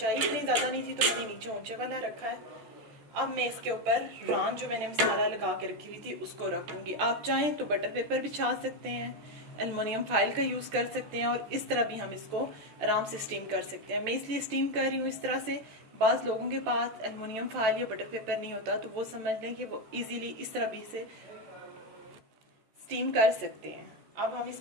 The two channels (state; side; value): late; left; 14 ms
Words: इतनी ज़्यादा नहीं थी तो मैंने नीचे ऊंचे वाला रखा है। अब मैं इसके ऊपर रान जो मैंने मसाला लगा के रखी हुई थी उसको रख दूँगी। आप चाहें तो बटर पेपर बिछा सकते हैं, एलुमिनियम फाइल का यूज़ कर सकते हैं, और इस तरह भी हम इसको आराम से स्टीम कर सकते हैं। मैं इसलिए स्टीम कर रही हूँ इस तरह से। बाज़ लोगों के पास एलुमिनियम फाइल या बटर पेपर नहीं होता, तो वो समझ लें कि वो इजीली इस तरह भी से स्टीम कर सकते हैं। अब हम